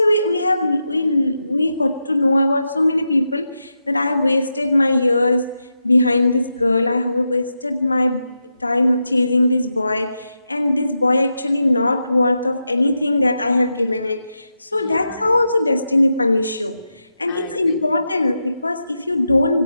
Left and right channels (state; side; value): inverted; both; correlation -0.87